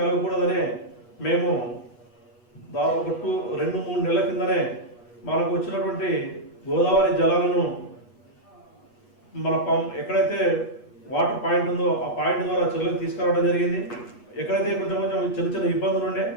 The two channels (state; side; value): late; right; 8.5 ms